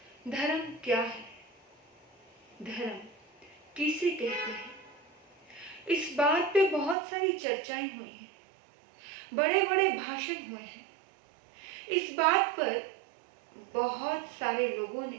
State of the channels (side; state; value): left; drops out; at 7.0 s